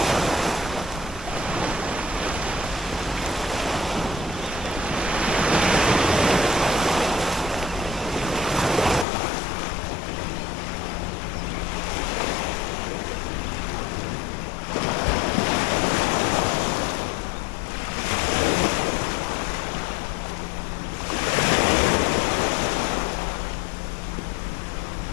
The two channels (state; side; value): drops out; right; at 9.1 s